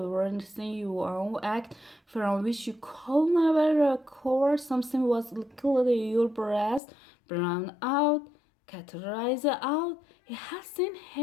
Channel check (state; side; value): drops out; right; at 6.8 s